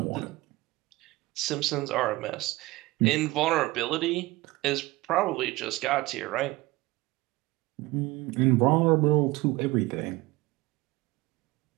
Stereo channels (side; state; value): left; quieter; 20.3 dB